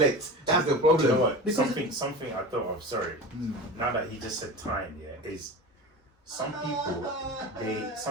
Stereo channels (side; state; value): both; normal; correlation 0.31